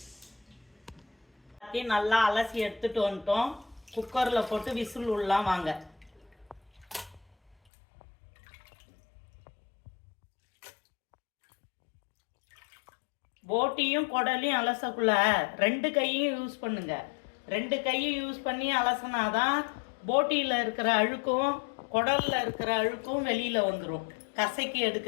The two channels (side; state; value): right; drops out; at 7.6 s